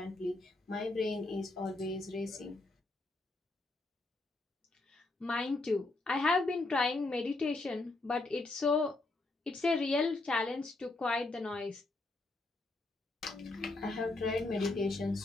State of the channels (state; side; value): quieter; right; 3.1 dB